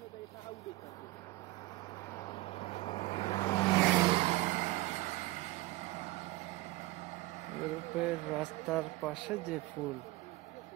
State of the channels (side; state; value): left; quieter; 19.6 dB